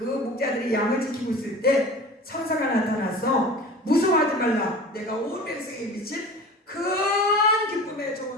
목자들이 양을 지키고 있을 때 천사가 나타나서 무서워하지 말라, 내가 온 백성에 미친 큰 기쁨의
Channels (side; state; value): both; normal; correlation 0.38